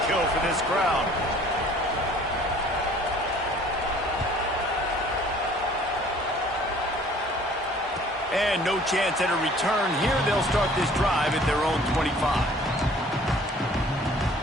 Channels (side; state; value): both; normal; correlation 0.53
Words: for this crowd. And no chance at a return here. They'll start this drive at their own 25.